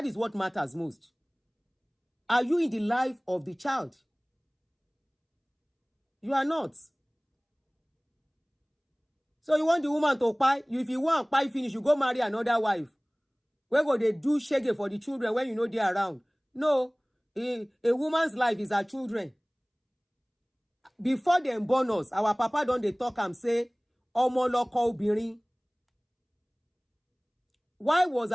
is what matters most. Are you in the life of the child? You are not. So you want the woman to pie? If you want pie finish, you go marry another wife. Where go they do shege for the children when you know they're around? No. A woman's life is her children. Before them born us, our papa don't they talk and say, Omo loko obìnrin. Why was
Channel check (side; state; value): both; identical; correlation 1.00